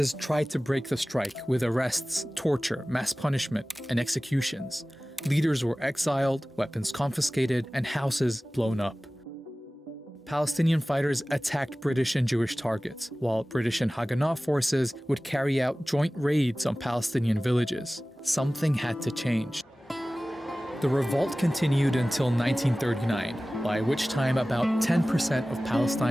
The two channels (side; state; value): both; normal; correlation 0.97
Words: tried to break the strike with arrests, torture, mass punishment, and executions. Leaders were exiled, weapons confiscated, and houses blown up. Palestinian fighters attacked British and Jewish targets, while British and Haganah forces would carry out joint raids on Palestinian villages. Something had to change. The revolt continued until 1939, by which time about 10% of